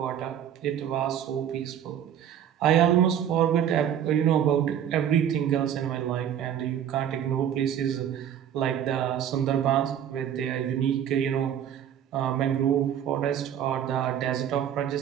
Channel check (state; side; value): quieter; left; 9.6 dB